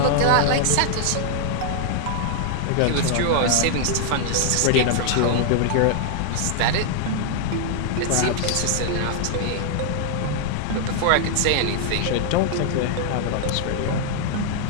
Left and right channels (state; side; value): different; both; correlation 0.00